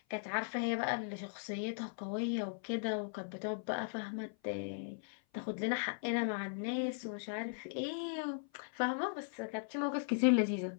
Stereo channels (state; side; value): silent; right; 52 dB below the other